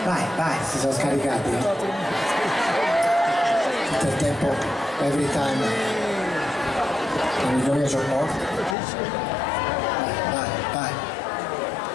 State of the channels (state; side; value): drops out; right; at 8.8 s